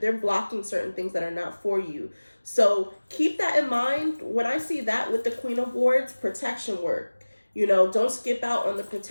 blocking certain things that are not for you. So keep that in mind. When I see that with the Queen of Wands, protection work. Don't skip out on the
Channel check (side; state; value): both; inverted; correlation -1.00